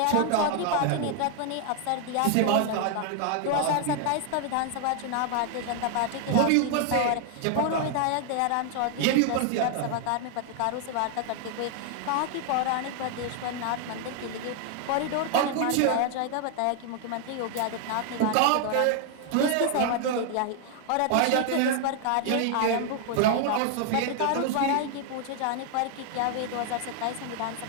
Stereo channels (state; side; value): different; both; correlation 0.00